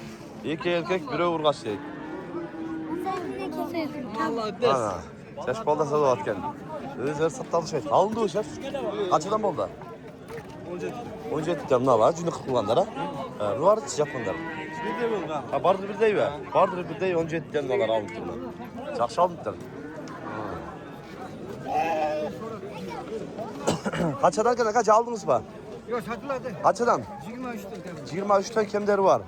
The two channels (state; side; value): identical; both; correlation 1.00